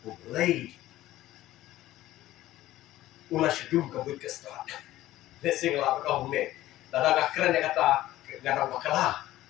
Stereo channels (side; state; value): right; quieter; 15.2 dB